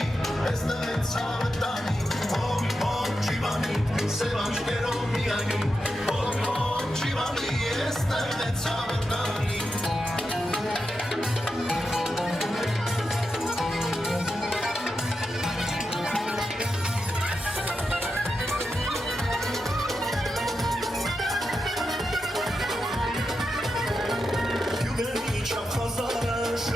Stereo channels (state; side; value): normal; both; correlation 0.88